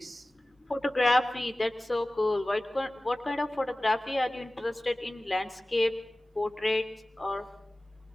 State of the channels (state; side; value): normal; both; correlation 0.97